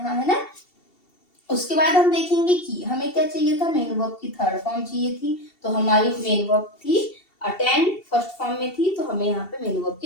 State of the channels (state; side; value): late; right; 2.7 ms